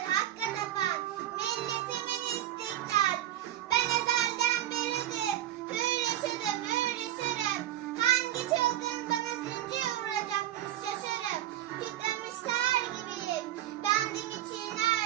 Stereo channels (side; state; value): left; quieter; 13.0 dB